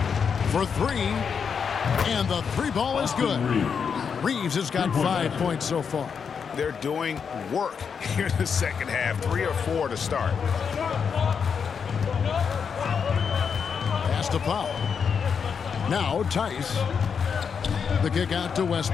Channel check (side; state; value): right; quieter; 6.5 dB